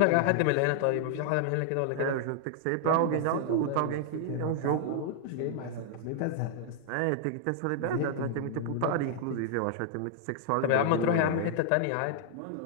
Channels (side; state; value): both; different; correlation -0.01